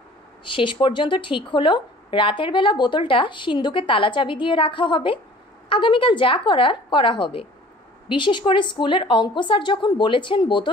শেষ পর্যন্ত ঠিক হলো রাতের বেলা বোতলটা সিন্ধুকে তালা চাবি দিয়ে রাখা হবে। আগামীকাল যা করার করা হবে। বিশেষ করে স্কুলের অঙ্ক স্যার যখন বলেছেন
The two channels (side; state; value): both; normal; correlation 0.49